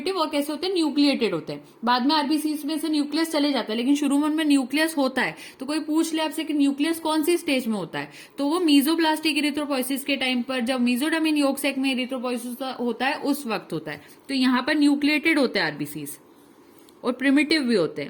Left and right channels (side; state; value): both; identical; correlation 1.00